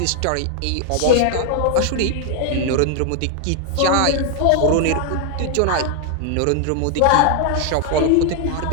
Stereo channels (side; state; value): both; different; correlation 0.00